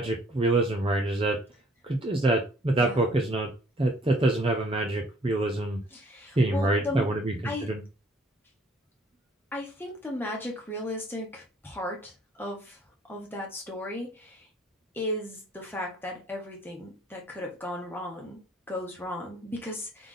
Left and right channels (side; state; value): both; normal; correlation 0.60